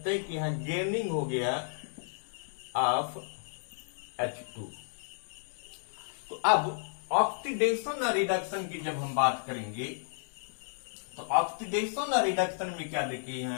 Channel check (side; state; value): right; silent; digital silence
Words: हैं कि यहां गेनिंग हो गया ऑफ H2। तो अब ऑक्सीडेशन और रिडक्शन की जब हम बात करेंगे, तो ऑक्सीडेशन और रिडक्शन में क्या देखिए,